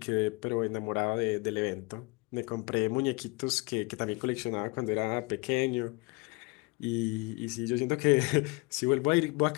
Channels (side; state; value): right; quieter; 26.8 dB